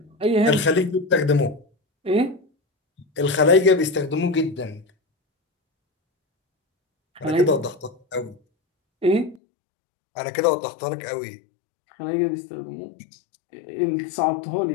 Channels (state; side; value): drops out; right; at 9.4 s